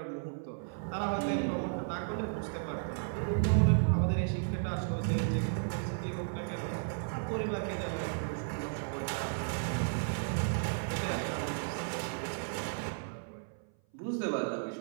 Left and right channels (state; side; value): silent; left; 55 dB below the other